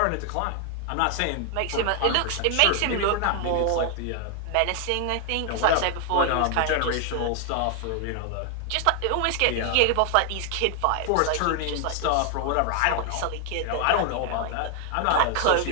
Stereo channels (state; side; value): different; both; correlation 0.00